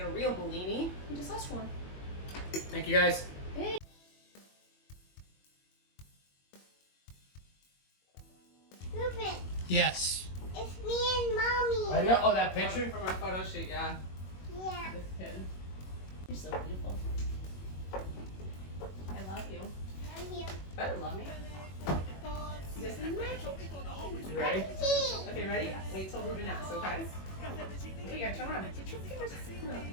a real Bellini. You just ask for one. Thank you guys. Hey. Yes. It's me and mommy. I know. Oh, that picture? From our photo shoot, yeah. Yeah. This kid. You're so beautiful. I love you. I'm here. Better love me. This is mac. You ready? Okay, ready? Wait till Ruben asks, okay? Oh, you gotta turn around.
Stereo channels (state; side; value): late; right; 21 ms